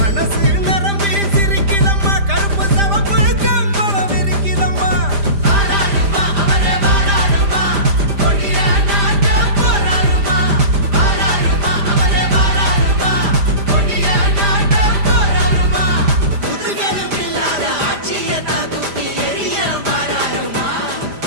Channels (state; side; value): late; left; 5.0 ms